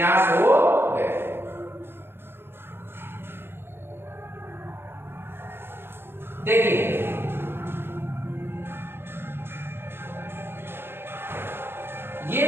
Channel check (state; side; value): late; left; 0.11 ms